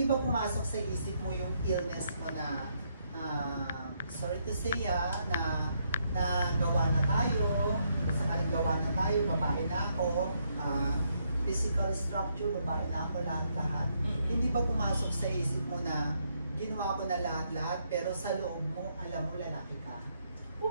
ba pumasok sa isip mo yung illness mo na, sorry to say na gawa na tayo, sakaling gawa na tayo, babae na ako, physical structure, babae na ako, lahat-lahat. Hindi ba pumasok sa isip mo na ginawa ko na lahat-lahat, pero sa loob mo, alam mo, lalaki ka?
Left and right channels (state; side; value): inverted; both; correlation -0.75